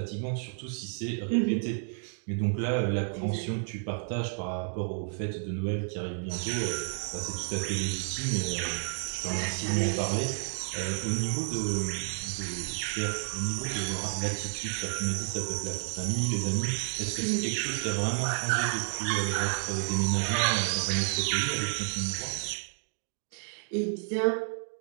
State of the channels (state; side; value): silent; left; 57 dB below the other